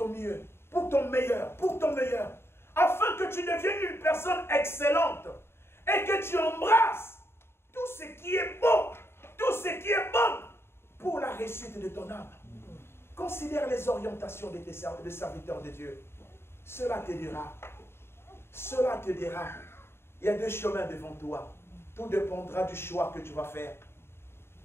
mieux, pour ton meilleur, afin que tu deviennes une personne excellente et que tu embrasses tout ce qui est beau, tout ce qui est bon pour la réussite de ton âme. Considère les orientations de tes serviteurs de Dieu. Cela te dira. Cela te dira. Il y a deux chemins devant toi. Tout dépendra du choix que tu vas faire.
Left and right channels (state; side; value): late; right; 0.12 ms